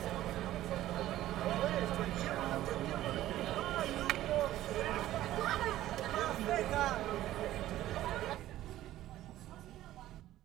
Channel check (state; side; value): quieter; left; 14.2 dB